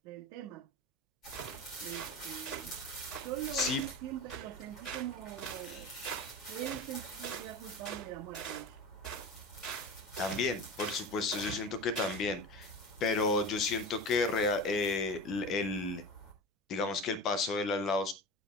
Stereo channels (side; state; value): both; normal; correlation 0.30